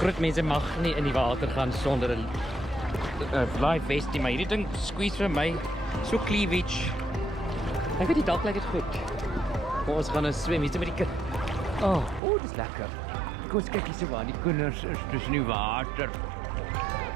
groot mense mag nie in die water gaan sonder 'n life vest nie, maar hierdie ding squeeze vir my so cleavage. Ek weet nie, dalk lyk dit goed. Maar ons gaan nou swem hier met die kind. Oh, dis lekker. Kom ons kyk hier so waar die kinders is tussen die water.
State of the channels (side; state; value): left; drops out; at 12.2 s